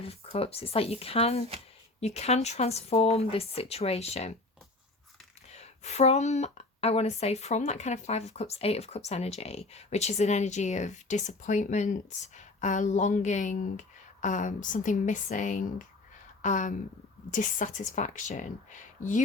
Cups. It's like you can transform this situation from, I want to say, from that kind of 5 of Cups, 8 of Cups energy, which is an energy of disappointment, longing, something missing, dissatisfaction.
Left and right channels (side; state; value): right; quieter; 3.1 dB